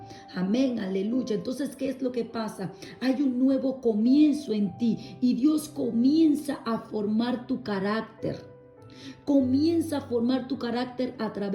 Amén, aleluya. Entonces, ¿qué es lo que pasa? Hay un nuevo comienzo en ti y Dios comienza a formar tu carácter. Comienza a formar tu carácter a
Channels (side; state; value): both; identical; correlation 1.00